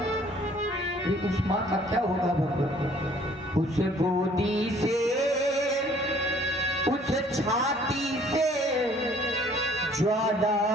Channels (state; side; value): normal; both; correlation 0.57